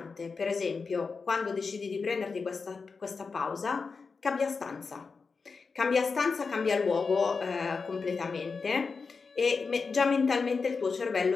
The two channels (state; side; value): quieter; right; 4.8 dB